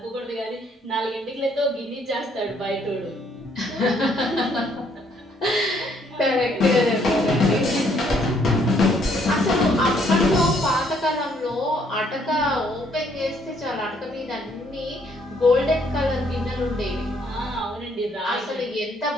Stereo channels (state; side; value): normal; both; correlation 0.67